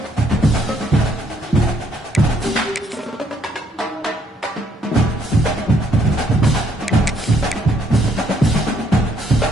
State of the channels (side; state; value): both; normal; correlation 0.69